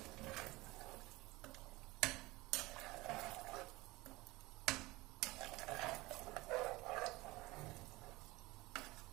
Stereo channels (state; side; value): quieter; left; 21.0 dB